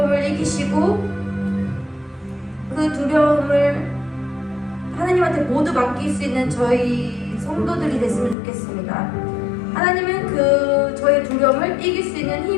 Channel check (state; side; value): drops out; right; at 8.3 s